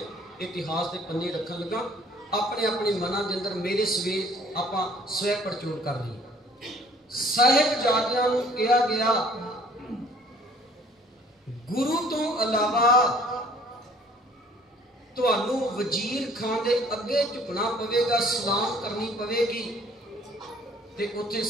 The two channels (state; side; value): normal; both; correlation 0.56